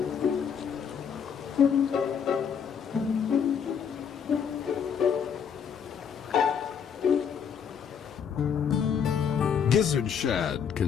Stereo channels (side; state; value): right; quieter; 7.3 dB